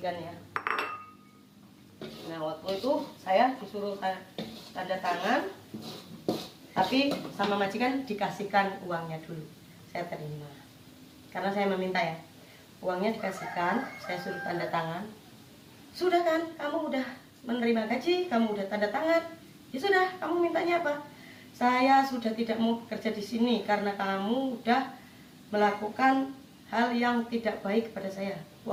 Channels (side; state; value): both; identical; correlation 1.00